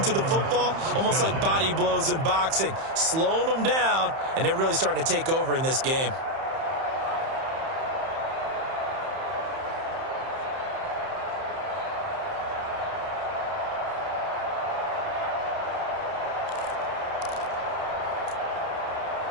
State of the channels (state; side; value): late; left; 31 ms